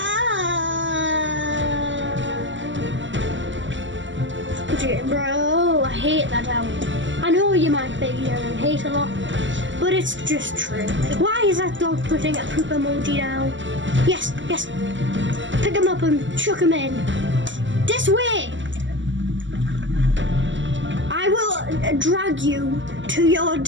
Bro, I hate that album. I know you might be hearing hate a lot, but it's just true. Why is that dog putting a poop emoji down? Yes. Pick him up and chuck him in. This Swim! I will drag you to your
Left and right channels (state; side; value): late; left; 0.54 ms